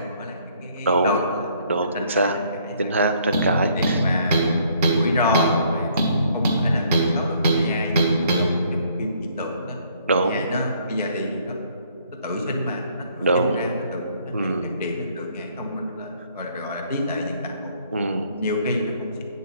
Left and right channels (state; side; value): inverted; both; correlation -0.64